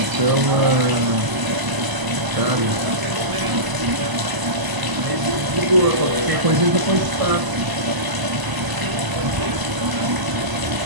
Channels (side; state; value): left; late; 1.0 ms